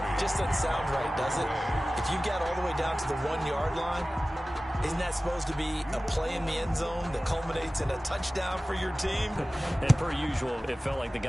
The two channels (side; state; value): both; normal; correlation 0.97